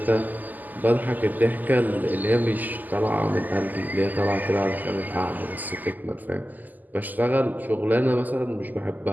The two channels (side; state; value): left; late; 0.084 ms